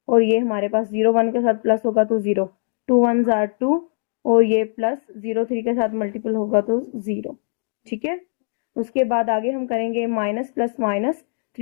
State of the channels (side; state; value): right; silent; digital silence